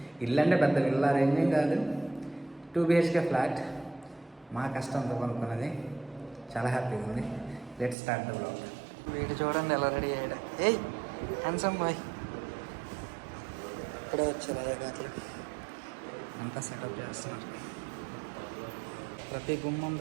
ఇల్లు అంటే పెద్ద విల్లా రేంజేం కాదు, 2 BHK ఫ్లాట్. మా కష్టంతో కొనుక్కున్నది. చాలా హ్యాపీగా ఉంది. Let's start the blog. వీడు చూడండి ఎలా రెడీ అయ్యాడు. ఏయ్ హ్యాండ్సమ్ బాయ్. ఇప్పుడే వచ్చారు అయ్యగారు, అంతా సెటప్ చేస్తున్నారు. ప్రతి గుమ్మం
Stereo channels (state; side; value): drops out; left; at 8.0 s